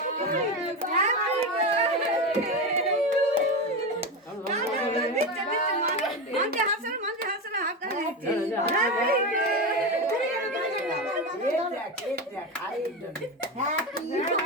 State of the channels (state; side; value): normal; both; correlation 0.17